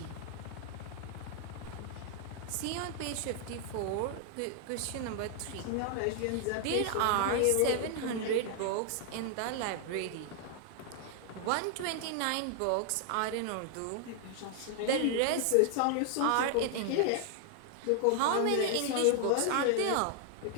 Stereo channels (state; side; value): different; both; correlation 0.00